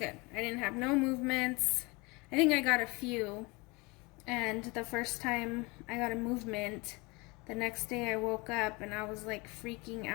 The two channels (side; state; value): right; quieter; 26.2 dB